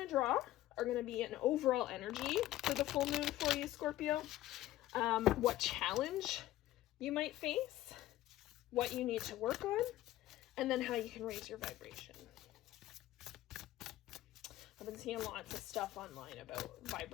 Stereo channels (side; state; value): right; quieter; 14.8 dB